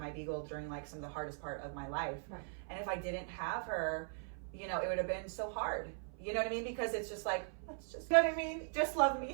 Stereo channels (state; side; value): silent; left; 51 dB below the other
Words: beagle during like some of the hardest part of my life, and if I didn't have her, it would have been so hard. You know what I mean? Because it's just like, let's just, just love